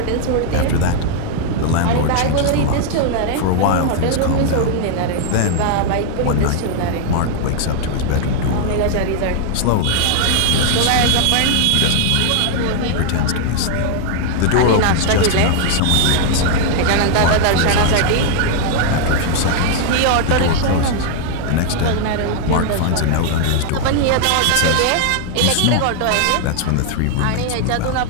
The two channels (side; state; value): both; different; correlation 0.00